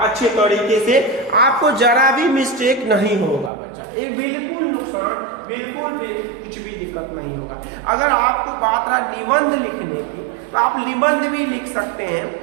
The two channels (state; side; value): drops out; left; at 3.5 s